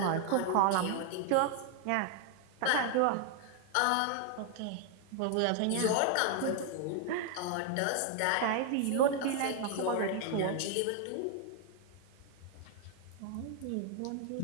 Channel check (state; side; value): different; both; correlation 0.00